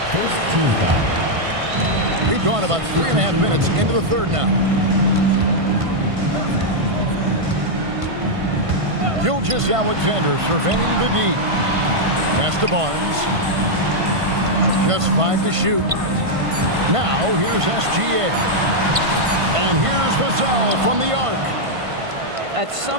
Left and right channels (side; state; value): left; late; 1.5 ms